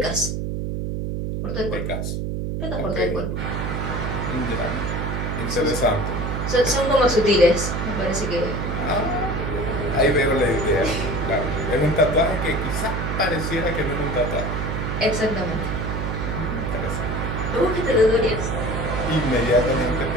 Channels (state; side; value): noise; right; hum, 2 dB below the sound